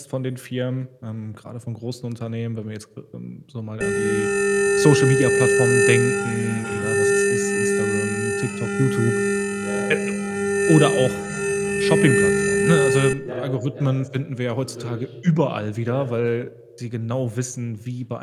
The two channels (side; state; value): both; identical; correlation 1.00